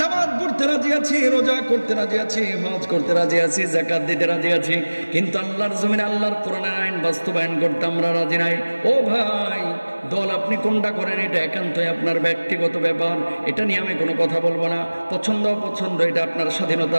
পড়তে রাজি আছি, রোজা করতে রাজি আছি, হজ করতে রাজি আছি, যাকাত দিতে রাজি আছি, কিন্তু আল্লাহর জমিনে আল্লাহর কোরআনের আইন বাস্তবায়ন করতে আমরা রাজি নাই। ও ভাই, দল আপনি কোনটা করেন এটা একান্তই আপনার ব্যক্তিগত ব্যাপার, এটা নিয়ে আমি কোনো কথা বলবো না। পছন্দ অপছন্দ এটা আপনার স্বাধীনতা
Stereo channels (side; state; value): both; inverted; correlation -1.00